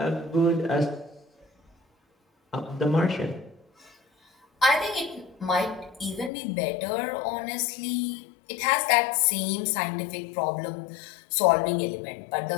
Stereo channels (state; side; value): drops out; right; at 6.3 s